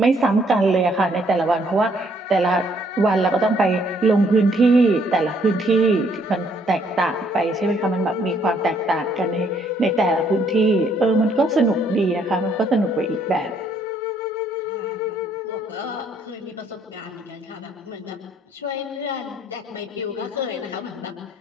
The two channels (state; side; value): normal; both; correlation 0.67